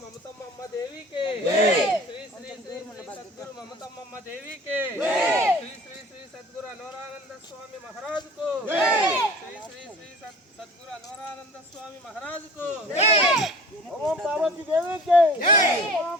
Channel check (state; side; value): normal; both; correlation 0.43